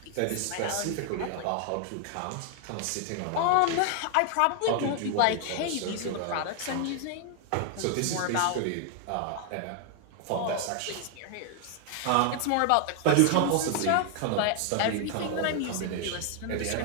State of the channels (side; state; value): both; different; correlation 0.00